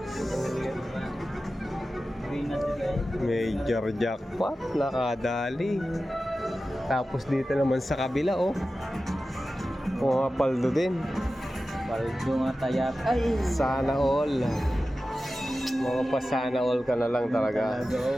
Major jackpot. Nakadali. Tapos dito naman sa kabila, oh. Pumapaldo din. Paldo nga tayak. Ay! Sana all. Mga pa sana all ka na lang talaga.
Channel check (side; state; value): both; normal; correlation 0.94